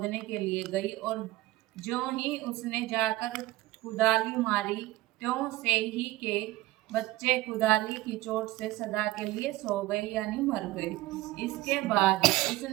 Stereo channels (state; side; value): quieter; left; 17.9 dB